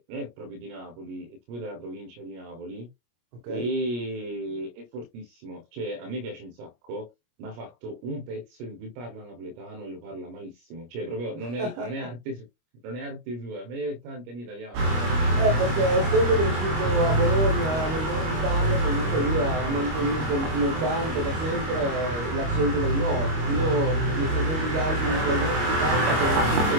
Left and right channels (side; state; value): left; late; 25 ms